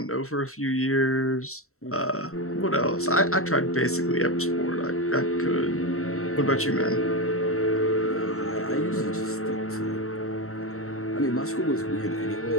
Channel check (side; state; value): right; late; 0.63 ms